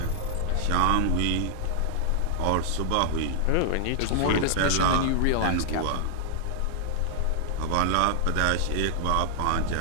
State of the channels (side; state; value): both; different; correlation -0.01